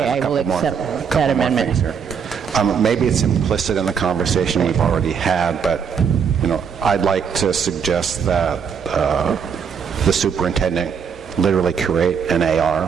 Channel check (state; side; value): quieter; left; 6.9 dB